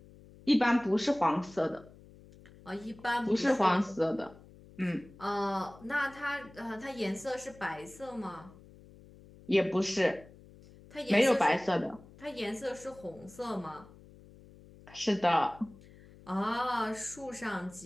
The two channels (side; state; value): left; noise; hum, 22 dB below the sound